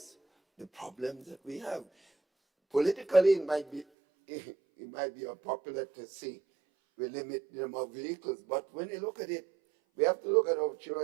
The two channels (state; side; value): drops out; left; at 3.9 s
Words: the problems that we have. Politically, it might be it might be unpopular to say we limit the number of vehicles, but when you look at it, we have to look at our